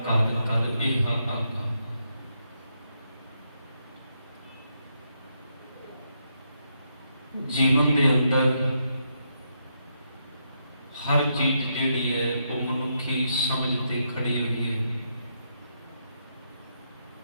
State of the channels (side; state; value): both; inverted; correlation -0.80